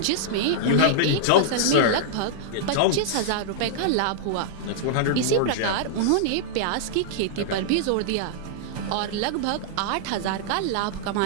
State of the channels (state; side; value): different; both; correlation -0.01